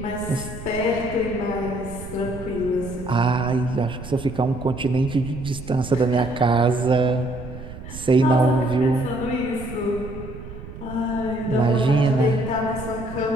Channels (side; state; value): right; noise; rumble, 12 dB below the sound